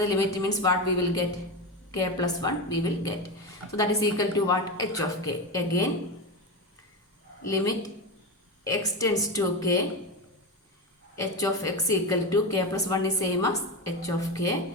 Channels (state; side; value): normal; both; correlation 0.18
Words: limit means what we will get? K plus 1 we will get. So that is equal to what? H of k. Again limit x tends to k, h of x equal to k plus 1 is same as h of k.